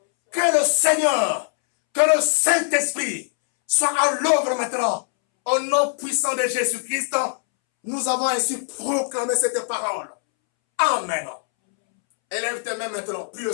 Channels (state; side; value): silent; right; 64 dB below the other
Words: Que le Seigneur, que le Saint-Esprit soit à l'œuvre maintenant. Au nom puissant de Jésus-Christ, nous avons ainsi proclamé cette parole. Amen. Élève tes mains maintenant. Prie le